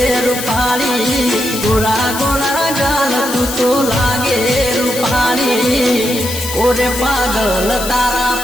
રૂપાળી, ગોરા ગોરા ગાલ તું તો લાગે રૂપાળી, ઓરે પાગલ તારા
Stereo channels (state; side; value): noise; left; hiss, 7 dB below the sound